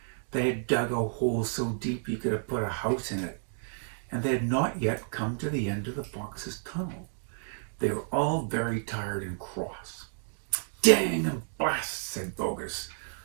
They had dug a hole so deep you could have put a house in it, and they had not yet come to the end of the fox's tunnel. They were all very tired and cross. "Dang and blast," said Bogus.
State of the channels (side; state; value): left; silent; digital silence